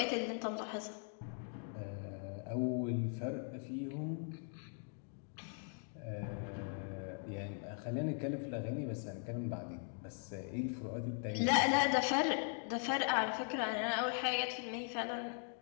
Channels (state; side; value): silent; right; 51 dB below the other